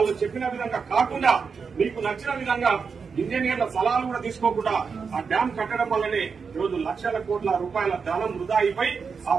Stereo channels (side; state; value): left; quieter; 5.6 dB